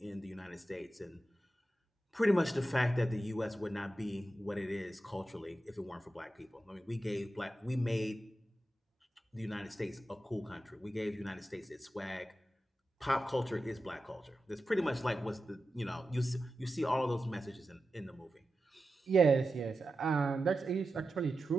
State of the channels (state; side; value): normal; both; correlation 0.91